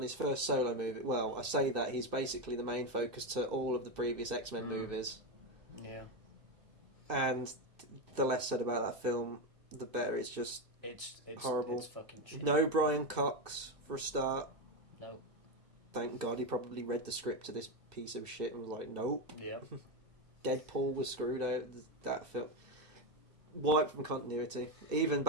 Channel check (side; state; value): left; late; 1.5 ms